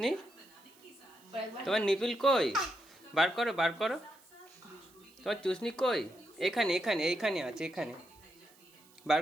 তোমার নিপিল কই বার করো বার করো তোমার চুসনি কই এখানে এখানে এইখানে আছে এখানে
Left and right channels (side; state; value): right; noise; hiss, 27 dB below the sound